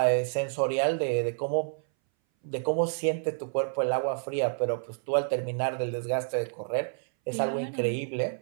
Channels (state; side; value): silent; left; 59 dB below the other